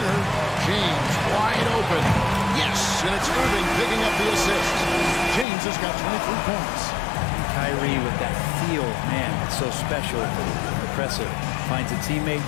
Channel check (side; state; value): right; drops out; at 5.5 s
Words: James wide open. Yes, and it's Irving picking up the assist. James has got 23 points. Kyrie with that feel, man, it's so special, impressive. Finds a teammate,